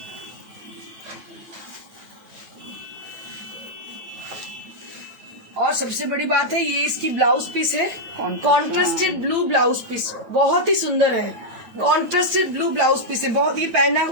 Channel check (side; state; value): left; late; 9.2 ms